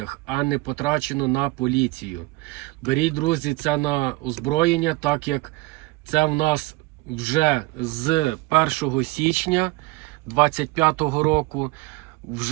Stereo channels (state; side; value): quieter; left; 22.0 dB